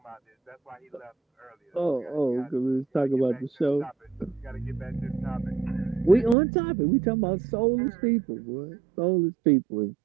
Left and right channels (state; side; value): drops out; left; at 6.4 s